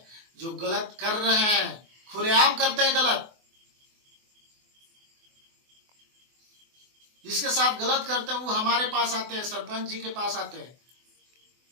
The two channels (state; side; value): late; left; 24 ms